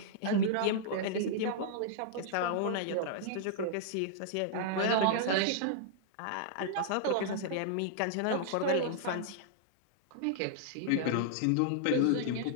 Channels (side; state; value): both; different; correlation -0.01